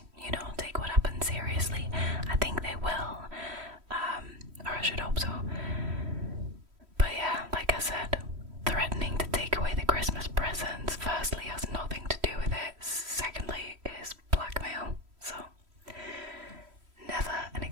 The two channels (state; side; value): late; left; 3.1 ms